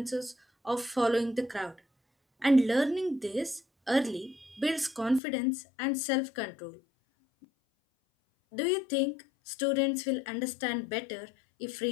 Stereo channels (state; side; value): drops out; right; at 5.2 s